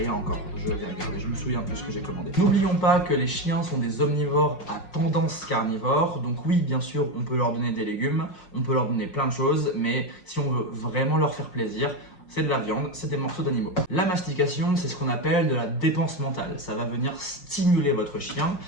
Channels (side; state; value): right; late; 5.5 ms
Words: encore, je vais regarder, je me souviens plus ce que j'ai commandé. N'oublions pas que les chiens sont des omnivores à tendance carnivore, donc oui, bien sûr, on peut leur donner des légumes, on peut leur donner plein de choses, mais si on veut vraiment leur faire plaisir, c'est de la viande, c'est des morceaux d'animaux. La mastication, c'est ce qu'on appelle de la dépense mentale. Ça va venir stimuler votre chien